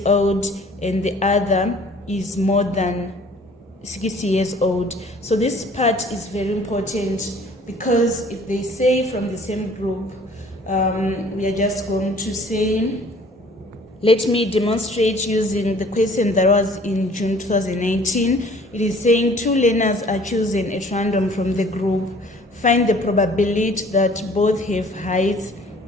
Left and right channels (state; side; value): normal; both; correlation 0.53